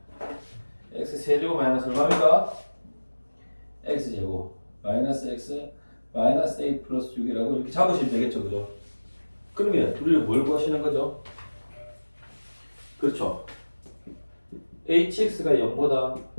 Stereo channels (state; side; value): inverted; both; correlation -1.00